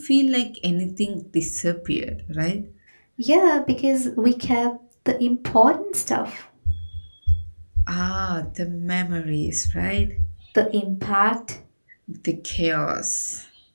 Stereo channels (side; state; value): both; inverted; correlation -1.00